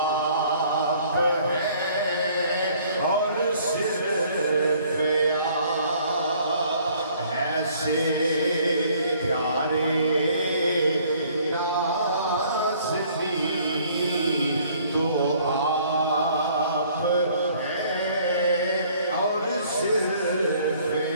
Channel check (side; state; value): both; inverted; correlation -0.58